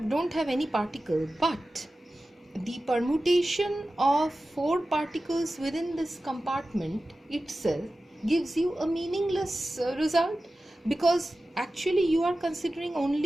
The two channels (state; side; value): normal; both; correlation 0.95